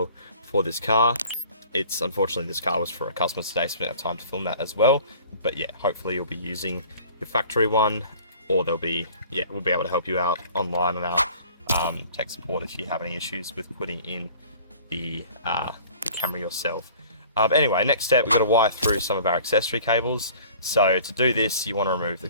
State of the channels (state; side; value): inverted; both; correlation -0.49